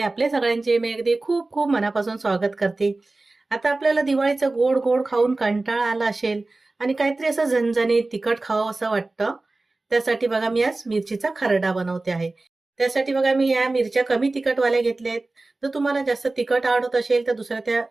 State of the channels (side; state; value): left; quieter; 3.2 dB